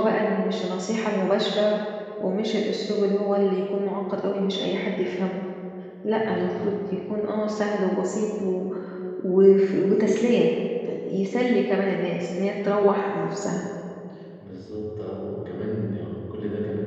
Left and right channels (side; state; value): both; identical; correlation 1.00